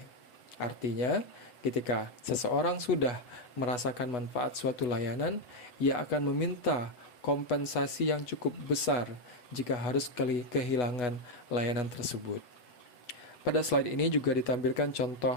Artinya, ketika seseorang sudah merasakan manfaat suatu layanan, ia akan meminta kompensasi yang cukup besar jika harus kehilangan layanan tersebut. Pada slide ini juga ditampilkan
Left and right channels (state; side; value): late; right; 8.1 ms